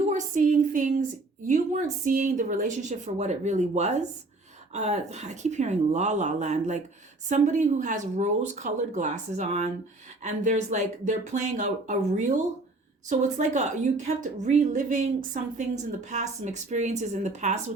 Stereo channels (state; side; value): quieter; left; 3.1 dB